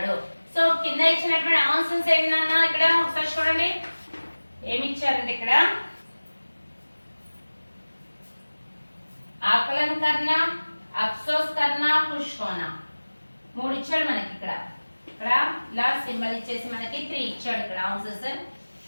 సో కింద ఇచ్చినటువంటి ఆన్సర్స్ ఏంటన్నా ఇక్కడ ఒకసారి చూడండి, ఏమి ఇచ్చారంటే ఇక్కడ आकलन करना, అఫ్సోస్ కర్నా ఖుష్ హోనా. 3 ఇచ్చాడు మనకి ఇక్కడ ఇలా సింబల్ ఇచ్చేసి మనకి 3 ఇచ్చాడు ఇక్కడ ఆన్సర్స్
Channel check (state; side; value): inverted; both; correlation -1.00